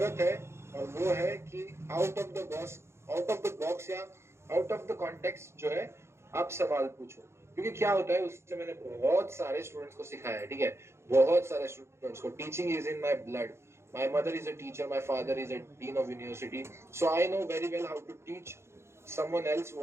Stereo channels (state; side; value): late; left; 0.13 ms